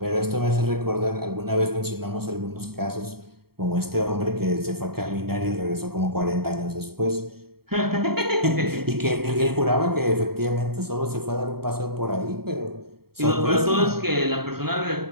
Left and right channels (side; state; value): left; late; 0.95 ms